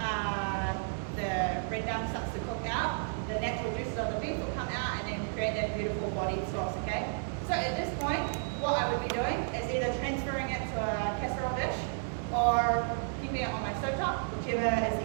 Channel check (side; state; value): left; silent; 56 dB below the other